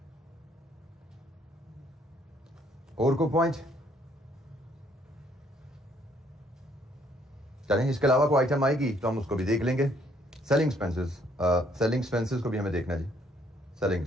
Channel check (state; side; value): normal; both; correlation 0.66